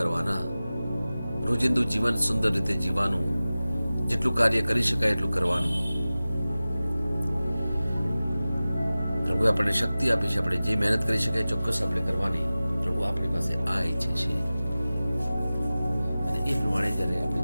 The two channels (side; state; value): both; inverted; correlation -0.96